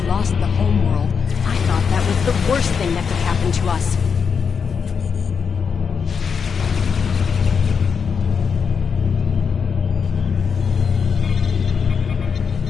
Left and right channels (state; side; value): quieter; right; 6.2 dB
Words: lost the homeworld, I thought that was the worst thing that could happen to us.